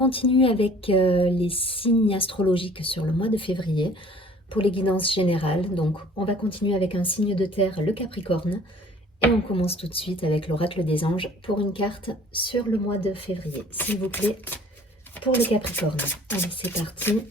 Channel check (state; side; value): normal; both; correlation 0.51